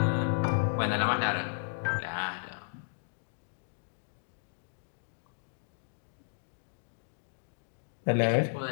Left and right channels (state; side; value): silent; right; digital silence